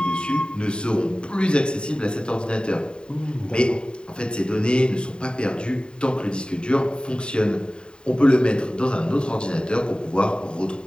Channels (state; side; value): late; right; 0.050 ms